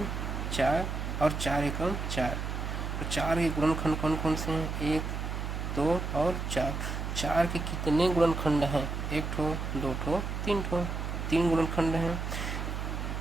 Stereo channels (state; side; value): noise; right; hum, 3 dB below the sound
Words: 4 और 4 एकम 4, तो 4 के गुणनखंड कौन कौन से हैं, 1 2 और 4। 4 के कितने गुणनखंड हैं, 1 ठो 2 ठो 3 ठो, 3 गुणनखंड हैं।